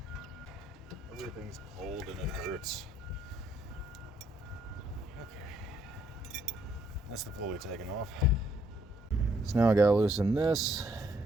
Everything's cold and it hurts. Okay, that's the pulley taken off. So now I gotta loosen this,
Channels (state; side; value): normal; both; correlation 0.69